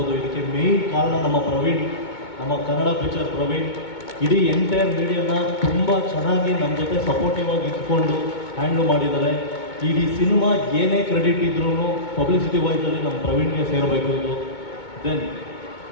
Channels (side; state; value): right; late; 2.2 ms